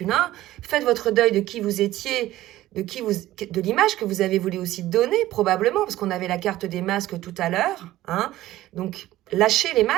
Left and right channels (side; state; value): left; quieter; 15.3 dB